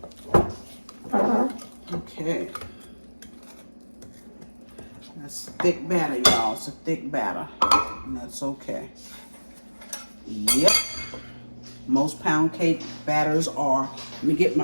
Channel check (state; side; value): inverted; both; correlation -1.00